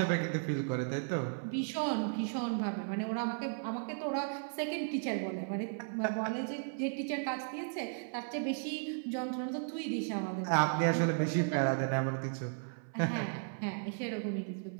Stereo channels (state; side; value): silent; left; 54 dB below the other